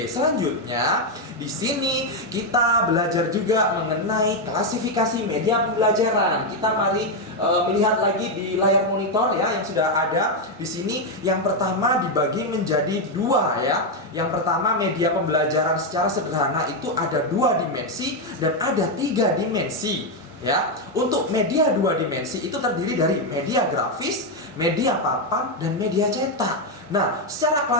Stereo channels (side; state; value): both; normal; correlation 0.04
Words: selanjutnya di sini kita belajar juga mengenai klasifikasi media pembelajaran. Kita mari melihat lagi di layar monitor ya yang sudah ada di sini. Yang pertama dibagi menjadi dua ya. Yang pertama media pembelajaran secara sederhana itu ada 2 dimensi dan ada 3 dimensi ya. Untuk media 2 dimensi itu terdiri dari media grafis, media papan, dan media cetak. Nah, secara